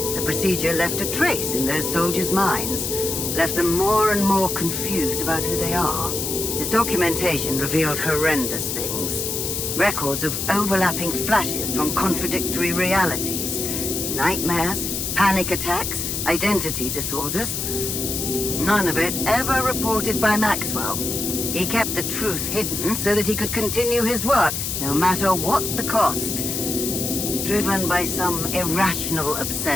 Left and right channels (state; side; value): noise; left; hiss, 2 dB below the sound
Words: the procedure left a trace in those soldiers' minds. Left them more and more confused about who they are. His documentation revealed horrendous things. Records of overlapping flashes from contradictory realities. Nightmares, panic attacks, identity disorders. None of it ever reported by Maxwell. He kept the truth hidden so that he could continue his work, no matter what the cost. Driven by some irrational